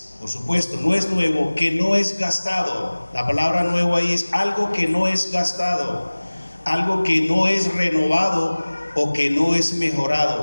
por supuesto, no es nuevo, que no es gastado. La palabra nuevo ahí es algo que no es gastado, algo que no es renovado o que no es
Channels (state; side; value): inverted; both; correlation -1.00